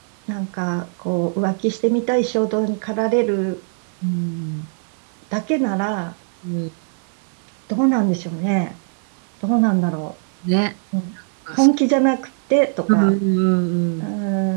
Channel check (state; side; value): silent; left; 65 dB below the other